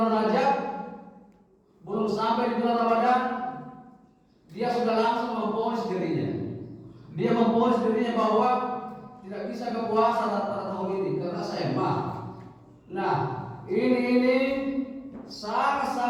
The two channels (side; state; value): both; identical; correlation 1.00